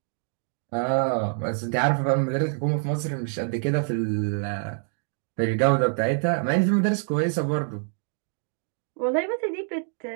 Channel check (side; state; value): left; silent; 61 dB below the other